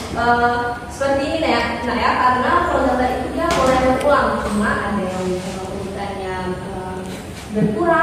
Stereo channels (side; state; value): both; identical; correlation 1.00